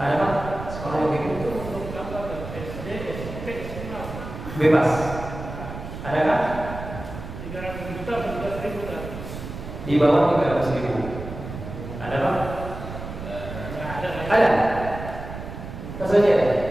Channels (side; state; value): right; noise; rumble, 10 dB below the sound